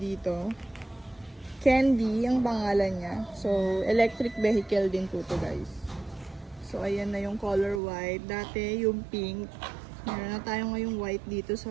dito. Candy ang pangalan niya. So, electric vehicle din po to guys. So, ayan na yung color white. Dati yung pink. Meron na tayo ngayong white dito sa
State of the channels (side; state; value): left; drops out; at 7.8 s